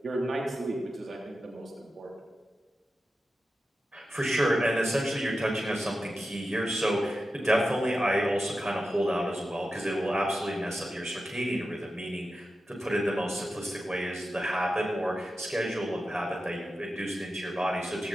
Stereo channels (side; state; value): both; normal; correlation 0.92